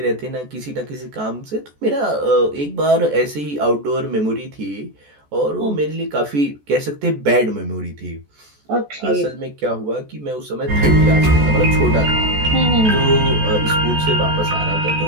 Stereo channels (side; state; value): left; late; 14 ms